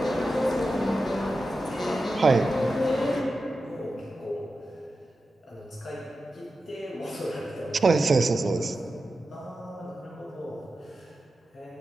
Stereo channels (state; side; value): normal; both; correlation 0.92